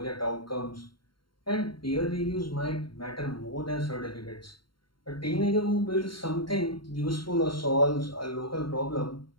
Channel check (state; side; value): late; right; 0.73 ms